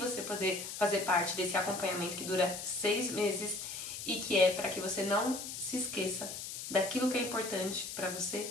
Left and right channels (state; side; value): noise; left; hiss, 7 dB below the sound